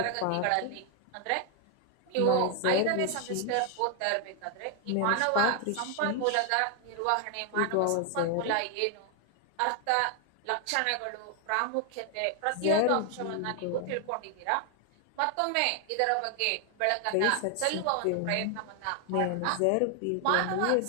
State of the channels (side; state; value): both; different; correlation 0.00